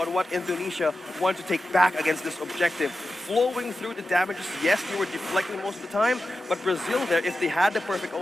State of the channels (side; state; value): both; normal; correlation 0.92